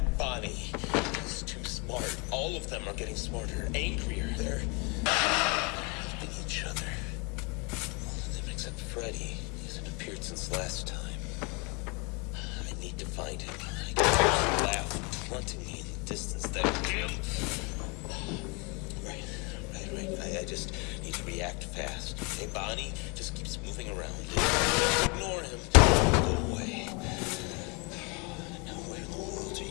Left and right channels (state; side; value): quieter; right; 31.0 dB